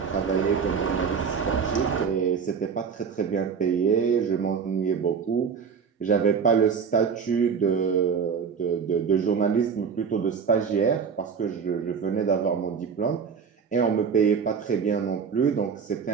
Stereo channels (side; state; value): left; quieter; 6.3 dB